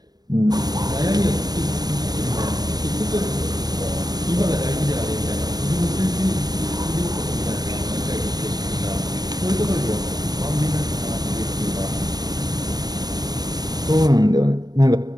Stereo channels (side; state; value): left; late; 0.19 ms